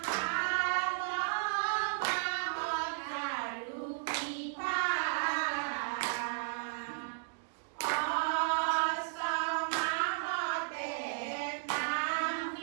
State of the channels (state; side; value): silent; left; digital silence